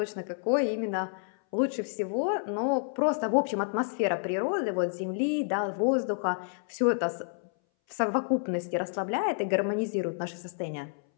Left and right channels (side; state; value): right; silent; 58 dB below the other